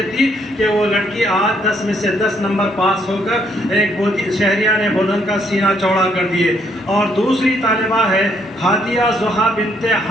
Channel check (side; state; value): both; normal; correlation 0.70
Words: دی کہ وہ لڑکی آج 10 میں سے 10 نمبر پاس ہو کر ایک شہریہ نے بودن کا سینہ چوڑا کر دیے. اور دوسری طالبہ ہے ہادیہ زحا بنت،